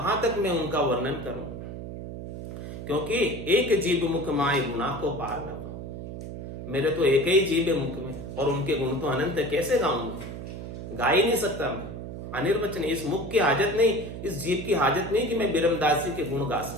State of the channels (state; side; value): noise; right; hum, 9 dB below the sound